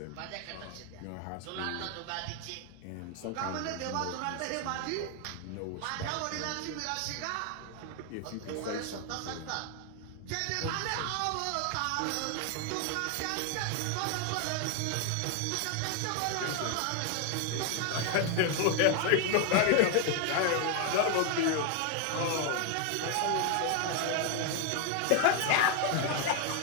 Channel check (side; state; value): both; different; correlation 0.01